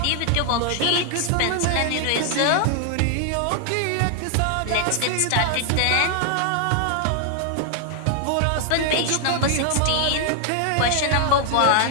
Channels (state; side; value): different; both; correlation 0.00